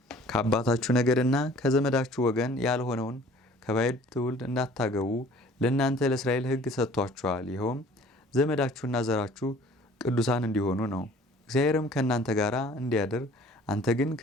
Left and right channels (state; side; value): normal; both; correlation 0.51